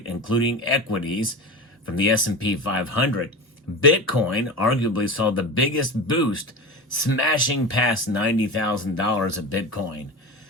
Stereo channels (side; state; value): both; normal; correlation 0.27